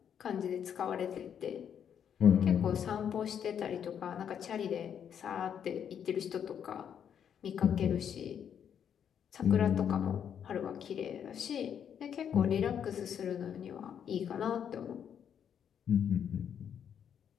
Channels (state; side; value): quieter; right; 8.5 dB